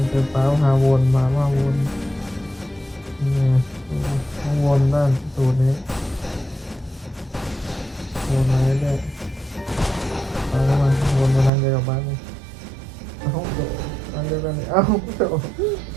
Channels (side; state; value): left; drops out; at 11.5 s